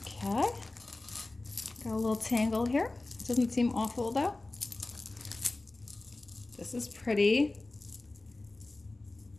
Okay, got a little tangle here. Doesn't seem awful though. This is pretty.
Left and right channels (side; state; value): right; quieter; 3.0 dB